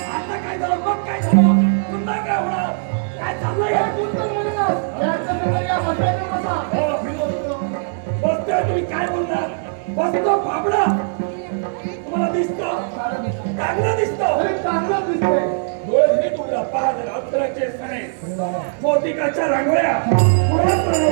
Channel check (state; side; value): silent; left; digital silence